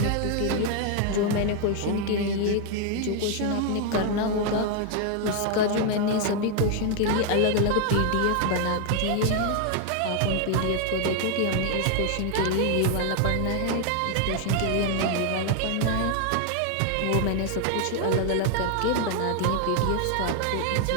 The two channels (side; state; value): both; different; correlation 0.00